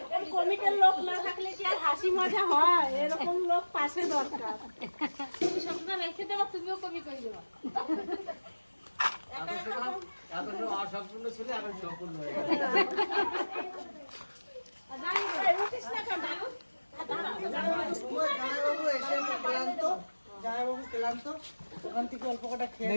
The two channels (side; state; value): both; inverted; correlation -1.00